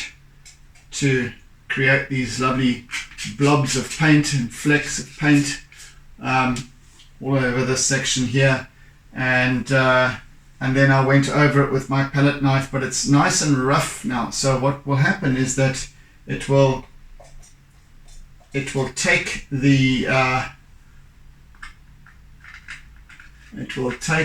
to create these lovely blobs of paint and flecks of paint all over this section here, and then I went over it with my palette knife, but it's nice and rough now. So what will happen is that it will take the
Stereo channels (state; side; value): identical; both; correlation 1.00